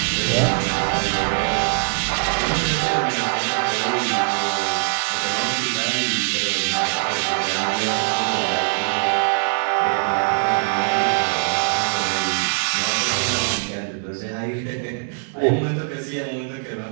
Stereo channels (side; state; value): left; silent; digital silence